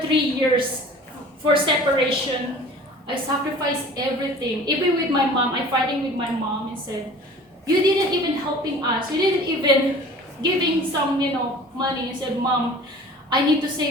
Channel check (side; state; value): both; normal; correlation 0.44